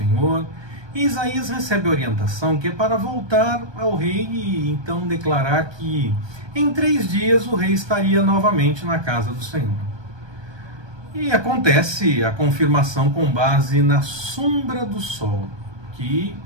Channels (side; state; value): left; late; 1.2 ms